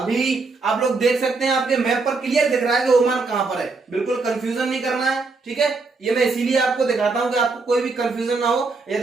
आप लोग देख सकते हैं, आपके मैप पर क्लियर दिख रहा है कि ओमान कहां पर है, बिल्कुल कंफ्यूजन नहीं करना है। ठीक है, ये मैं इसीलिए आपको दिखाता हूं कि आपको कोई भी कंफ्यूजन ना हो।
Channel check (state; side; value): quieter; left; 4.0 dB